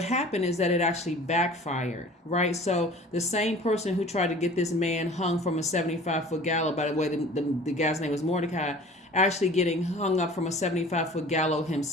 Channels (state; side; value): normal; both; correlation 0.45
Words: happened is that it actually backfired, right? So the same person who tried to get this man hung from a 75-foot gallows, by the way, the guy's name was Mordecai, actually getting hung up from a 75-foot gallows